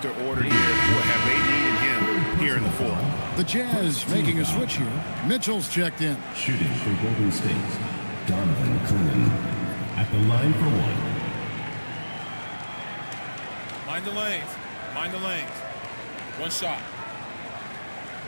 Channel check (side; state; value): both; inverted; correlation -1.00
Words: ordered here. What have they needed him here in the fourth? The Jazz making a switch here. Mitchell's checked in. Shooting for Golden State, Donovan Klingon at the line for 1. Mind the lanes. Mind the lanes. One shot.